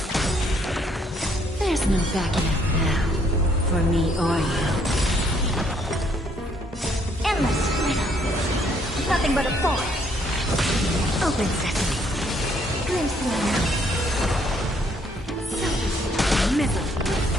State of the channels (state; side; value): normal; both; correlation 0.68